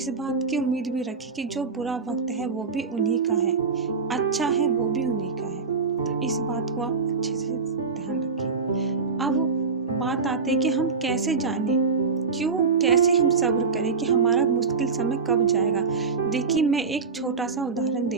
बात की उम्मीद भी रखिए कि जो बुरा वक्त है वो भी उन्हीं का है, अच्छा है वो भी उन्हीं का है। तो इस बात को आप अच्छे से ध्यान रखिए। अब बात आती है कि हम कैसे जाने, कैसे हम सब्र करें कि हमारा मुश्किल समय कब जाएगा। देखिए मैं एक छोटा सा उदाहरण दे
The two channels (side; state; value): left; quieter; 4.9 dB